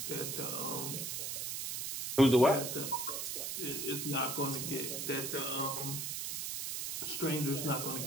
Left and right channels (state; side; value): noise; right; hiss, 3 dB below the sound